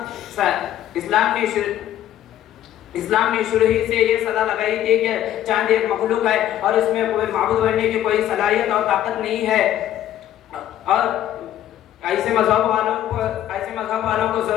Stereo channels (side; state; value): right; quieter; 11.9 dB